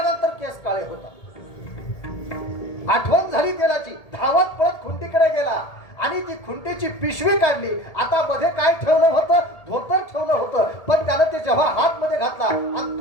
केस काळे होतात. आठवण झाली तेलाची, धावत पळत खुंटीकडे गेला आणि ती खुंटीची पिशवी काढली. आता मध्ये काय ठेवलं होतं, धोतर ठेवलं होतं, पण त्यानं ते जेव्हा हात मध्ये घातला आणि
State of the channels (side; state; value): right; late; 1.7 ms